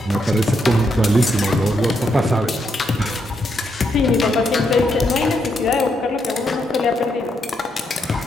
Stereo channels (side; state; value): both; normal; correlation 0.79